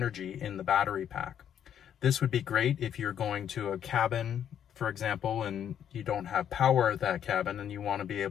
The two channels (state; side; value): quieter; right; 9.3 dB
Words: in the battery pack. This would be great if you're going to a cabin, for example, and you don't have power at that cabin and you want to be